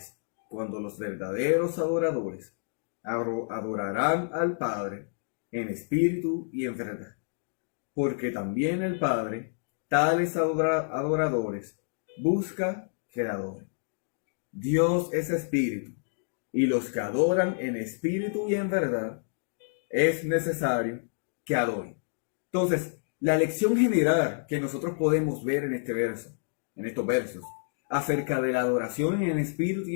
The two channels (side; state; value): right; silent; digital silence